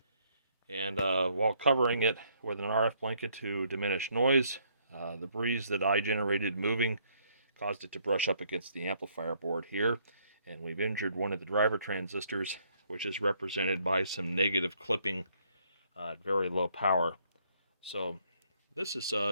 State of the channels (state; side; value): inverted; both; correlation -0.68